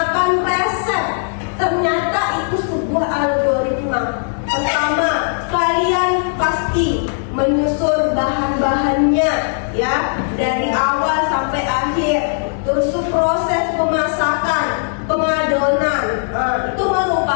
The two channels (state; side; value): silent; right; digital silence